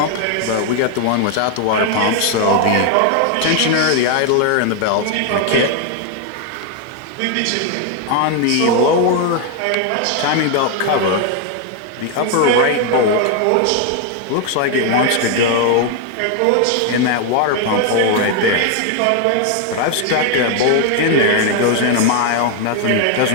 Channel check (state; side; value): different; both; correlation 0.01